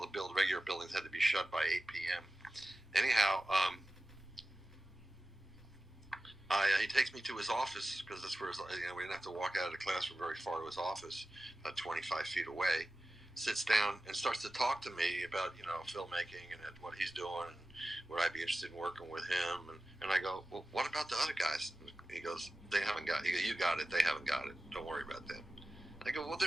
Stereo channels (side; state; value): both; normal; correlation 0.95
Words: regular buildings had to be shut by 8 p.m. Anyhow, he takes me to his office, because that's where we didn't have to walk out of the classroom very far to his office, about 25 feet away. Sits down and starts to talk to me about, you know, filmmaking and what he's doing, and would I be interested in working with him? And I go, well, what about the other guys? He goes, they haven't got it. You got it. They haven't got it. Don't worry about them. I go, well,